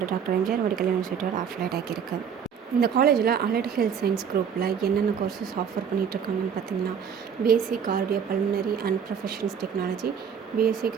doctor MGR medical யூனிவர்சிட்டியோட அஃபிலியேட் ஆகியிருக்கு. இந்த காலேஜில் அலைட் ஹெல்த் சயின்ஸ் குரூப்பில் என்னென்ன கோர்சஸ் ஆஃபர் பண்ணிகிட்ருக்காங்கன்னு பார்த்தீங்கன்னா, BSc cardio pulmonary and professionals technology, BSc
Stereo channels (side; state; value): left; quieter; 7.4 dB